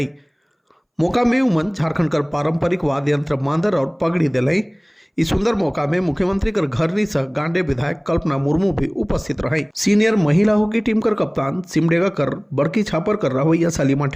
मौका में उमन झारखंड कर पारंपरिक वाद्य यंत्र मांदर और पगड़ी दिलाई। इस सुंदर मौका में मुख्यमंत्री कर घरनी सह गांडे विधायक कल्पना मुर्मू भी उपस्थित रही। सीनियर महिला हॉकी टीम कर कप्तान सिमडेगा कर बड़की छापर कर रवैया सलीमा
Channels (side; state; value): both; identical; correlation 1.00